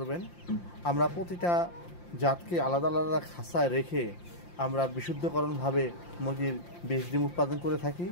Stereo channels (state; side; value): late; right; 5.8 ms